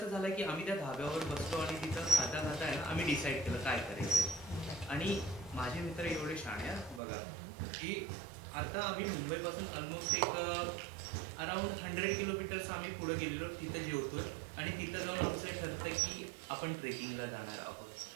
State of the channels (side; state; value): left; drops out; at 7.0 s